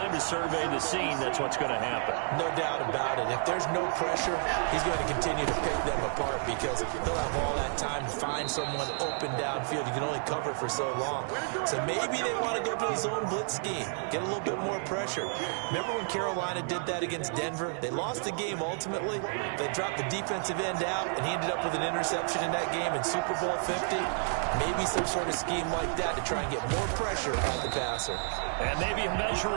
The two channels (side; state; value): left; silent; 57 dB below the other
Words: to survey the scene, that's what's going to happen. No doubt about it. If there's no pressure, he's going to continue to pick them apart because he'll have all that time to find someone open downfield. You can only cover for so long. So maybe they want to go to a zone blitz scheme, get a little bit more pressure. Remember when Carolina did that against Denver? They lost the game ultimately. They dropped the defensive end out, and he ended up with an interception in that game in Super Bowl 50. Maybe some sort of scheme like that to try and get more pressure on the passer. And maybe a measure